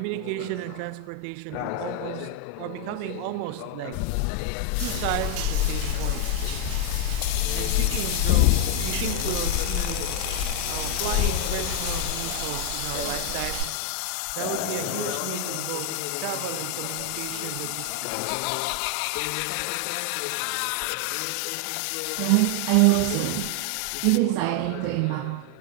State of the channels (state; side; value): different; both; correlation 0.01